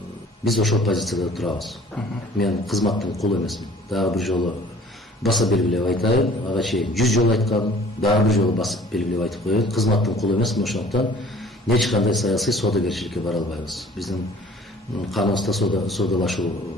Биз ошол позицияда турабыз. Мен кызматтын кулу эмесмин. Дагы бир жолу баса белгилеп айтайын, ага чейин 100 жолу айткам, дагы бир жолу басып белгилеп айтып коеюн. Кызматтын кулу эмесмин, ошондуктан эч кандай саясий соодагерчиликке бара албайбыз. Биздин каныбызда соодалашуу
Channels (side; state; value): both; normal; correlation 0.51